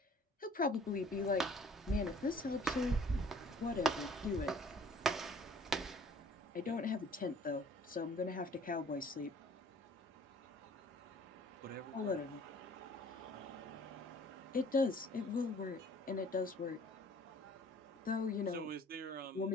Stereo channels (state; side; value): normal; both; correlation 0.54